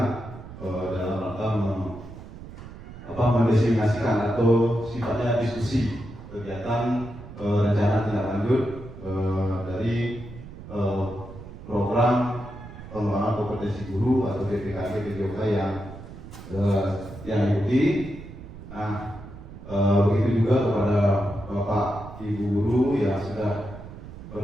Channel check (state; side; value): noise; right; rumble, 14 dB below the sound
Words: dalam rangka mendesimasikan atau sifatnya diskusi kegiatan rencana tindak lanjut dari program pengembangan kompetensi guru atau BPKG PJOK yang diikuti. Nah, begitu juga kepada Bapak Ibu guru yang sudah